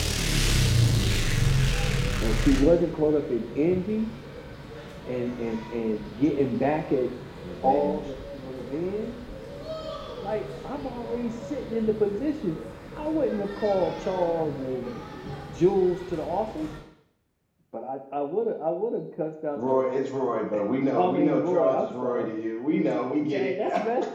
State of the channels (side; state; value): both; identical; correlation 1.00